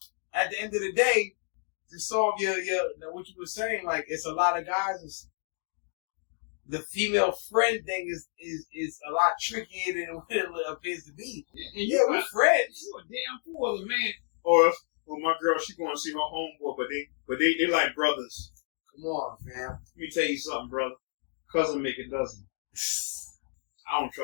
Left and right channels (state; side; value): silent; right; 58 dB below the other